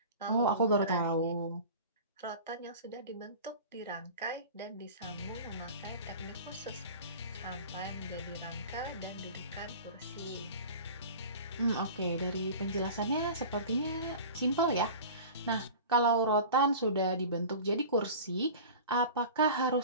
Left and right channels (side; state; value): both; inverted; correlation -0.37